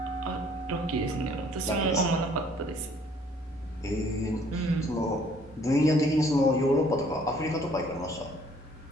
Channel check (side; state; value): both; normal; correlation 0.60